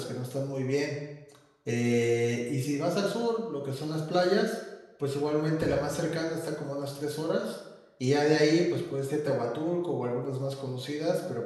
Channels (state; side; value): identical; both; correlation 1.00